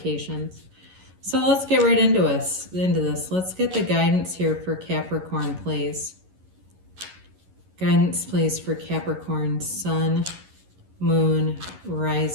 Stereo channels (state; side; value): late; left; 11 ms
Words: So let's get right into this. Let's get the guidance here for Capricorn, please. Guidance, please, for Capricorn, Sun, Moon,